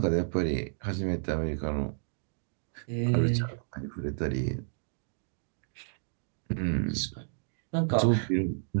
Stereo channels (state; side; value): silent; left; digital silence